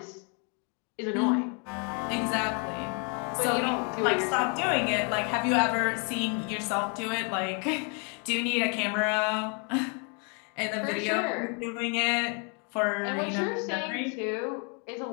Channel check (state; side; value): quieter; right; 36.8 dB